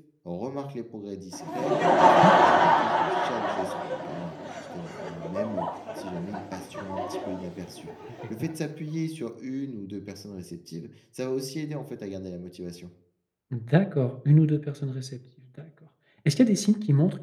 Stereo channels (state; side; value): identical; both; correlation 1.00